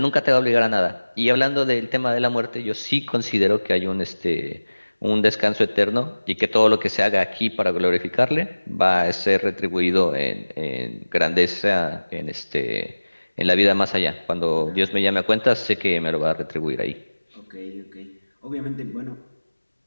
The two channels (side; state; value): both; inverted; correlation -1.00